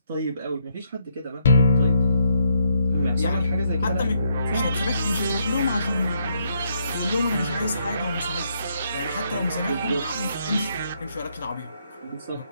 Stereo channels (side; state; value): both; inverted; correlation -0.74